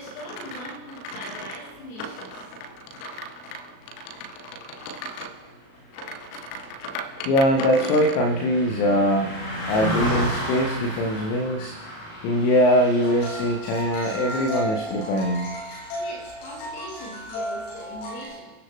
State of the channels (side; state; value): right; late; 37 ms